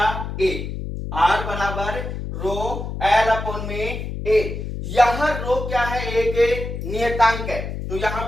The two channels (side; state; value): left; noise; hum, 6 dB below the sound